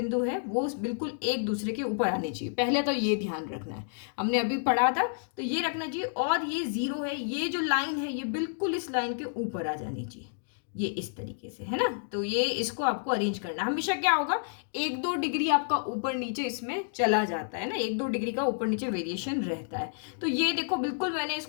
है वो बिल्कुल एक दूसरे के ऊपर आने चाहिए। पहले तो ये ध्यान रखना है, हमने अभी पढ़ा था तो ये रखना चाहिए। और ये जीरो है, ये जो लाइन है ये बिल्कुल इस लाइन के ऊपर आ जानी चाहिए, ये इस तरीके से, है ना। तो ये इसको आपको अरेंज करना। हमेशा क्या होगा, 1-2 डिग्री आपका ऊपर नीचे इसमें चला जाता है ना, 1-2 डिग्री का ऊपर नीचे वेरिएशन रहता है। तो ये देखो बिल्कुल मैंने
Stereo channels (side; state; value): right; silent; digital silence